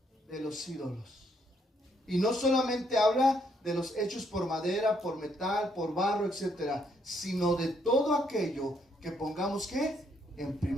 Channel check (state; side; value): normal; both; correlation 0.72